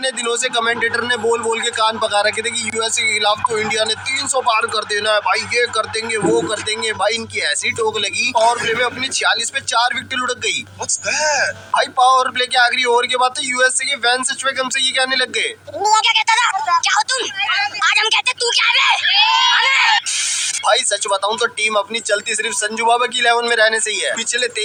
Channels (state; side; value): identical; both; correlation 1.00